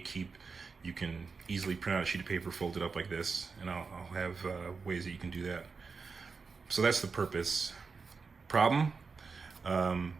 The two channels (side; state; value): left; quieter; 4.9 dB